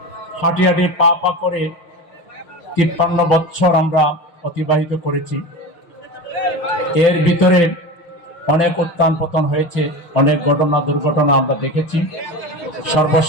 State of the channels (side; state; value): right; late; 5.9 ms